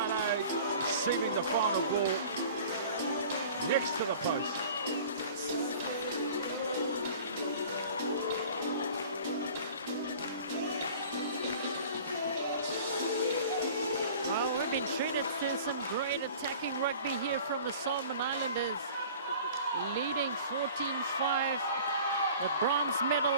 receiving the final ball next to the post. Well, we've been treated to some great attacking rugby here from the Solomon Islanders. Leading 14-5. The bronze medal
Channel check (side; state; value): both; inverted; correlation -0.45